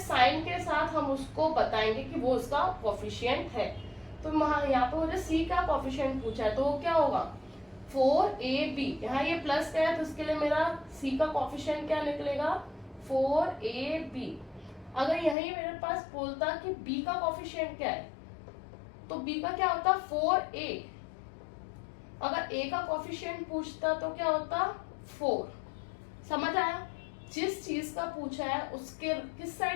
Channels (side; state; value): right; drops out; at 15.4 s